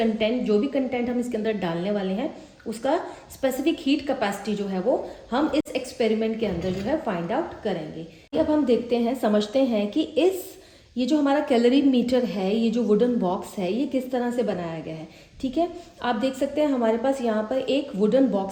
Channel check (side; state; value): both; identical; correlation 1.00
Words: जो भी कंटेंट हम इसके अंदर डालने वाले हैं उसका स्पेसिफिक हीट कैपेसिटी जो है वो हम इस एक्सपेरिमेंट के अंदर जो है फाइंड आउट करेंगे। अब हम देखते हैं, समझते हैं कि ये जो हमारा कैलोरीमीटर है, ये जो वुडन बॉक्स है ये किस तरह से बनाया गया है। ठीक है, आप देख सकते हैं हमारे पास यहाँ पर एक वुडन